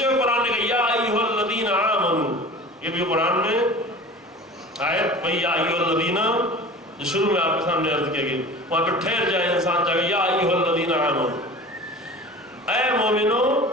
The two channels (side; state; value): both; normal; correlation 0.38